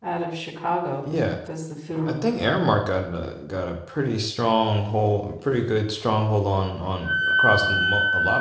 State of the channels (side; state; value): both; identical; correlation 1.00